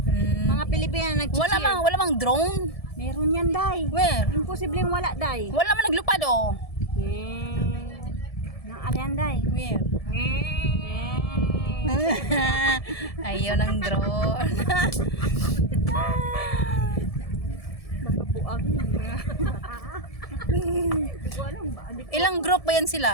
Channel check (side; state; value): right; late; 1.7 ms